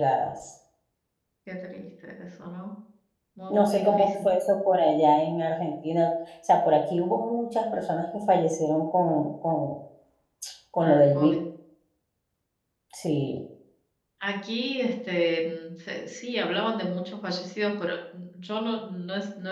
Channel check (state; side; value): identical; both; correlation 1.00